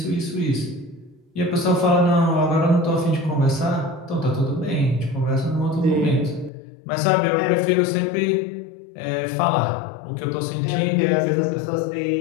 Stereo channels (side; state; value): right; drops out; at 6.5 s